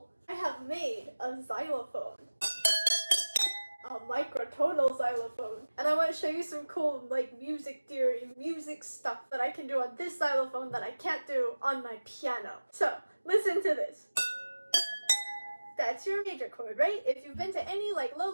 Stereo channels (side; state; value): both; inverted; correlation -1.00